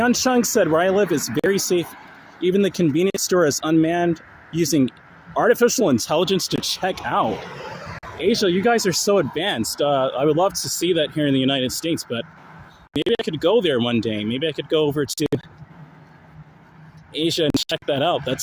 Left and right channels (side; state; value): both; identical; correlation 1.00